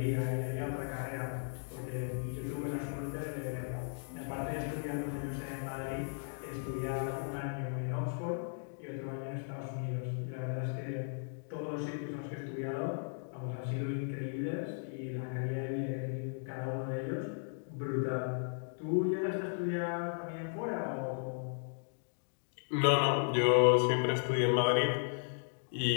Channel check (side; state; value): right; silent; digital silence